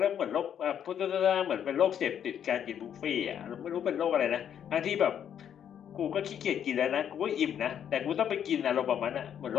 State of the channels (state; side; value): quieter; right; 9.1 dB